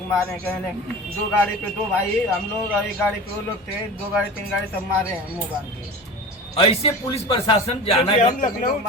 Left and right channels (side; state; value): both; normal; correlation 0.34